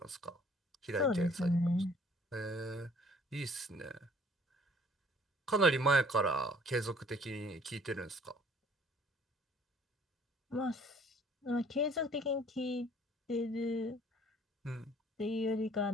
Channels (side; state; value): both; normal; correlation 0.56